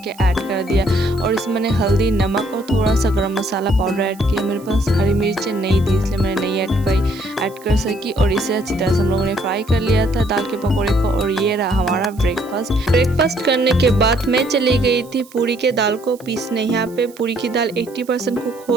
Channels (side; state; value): right; noise; hiss, 24 dB below the sound